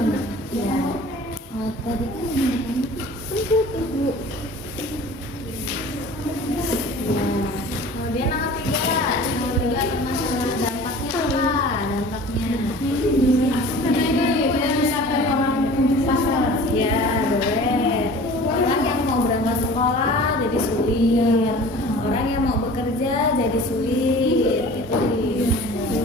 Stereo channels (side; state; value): both; normal; correlation 0.43